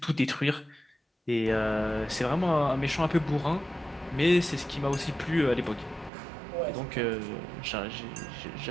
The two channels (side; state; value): left; drops out; at 6.1 s